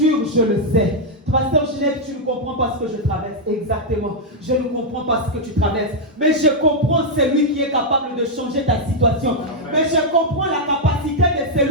je le sais. Pasteur Ginette, tu ne comprends pas ce que je traverse. Exactement. Je ne comprends pas ce que tu traverses. Mais je comprends celui qui est capable de changer ta situation. Amen. Mais je comprends la capacité de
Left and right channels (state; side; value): normal; both; correlation -0.03